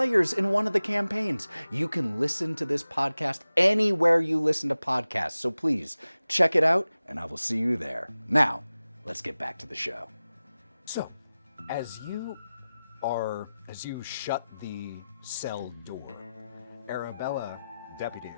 in one of the campaigns. You can listen to this podcast anywhere you listen to podcasts, so please check it out, and I will see you there. Now, let's get back to the show. So, as you shut the cell door, Deputy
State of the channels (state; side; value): inverted; both; correlation -0.95